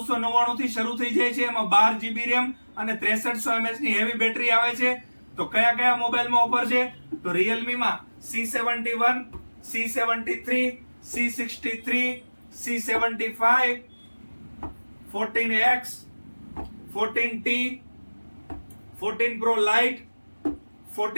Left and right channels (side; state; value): both; inverted; correlation -1.00